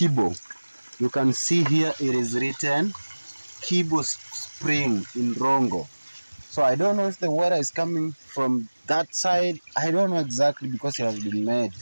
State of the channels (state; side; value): inverted; both; correlation -1.00